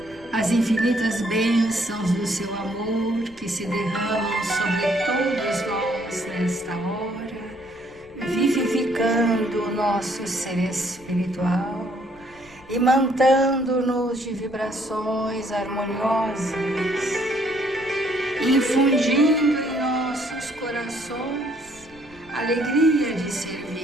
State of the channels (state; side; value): noise; left; rumble, 25 dB below the sound